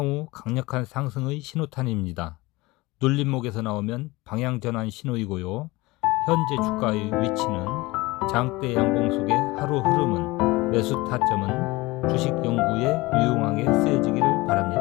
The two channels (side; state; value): right; quieter; 21.6 dB